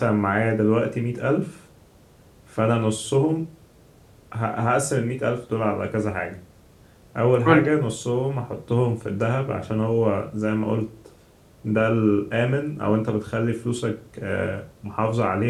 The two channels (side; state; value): both; identical; correlation 1.00